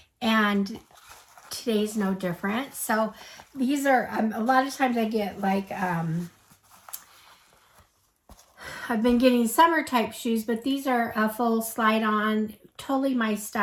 and today's no different. So these are a lot of times I get like I've been getting summer type shoes, but these are a full slide on, totally my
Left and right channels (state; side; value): identical; both; correlation 1.00